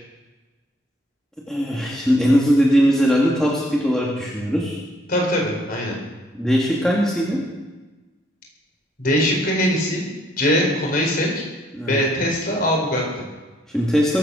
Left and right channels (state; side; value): normal; both; correlation 0.68